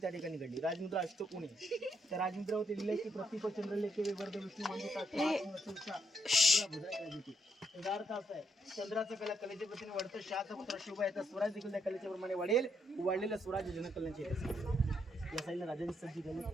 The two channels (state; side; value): normal; both; correlation 0.77